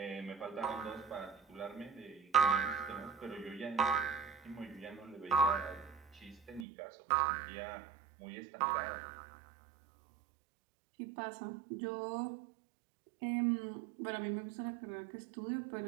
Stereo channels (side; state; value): left; drops out; at 6.7 s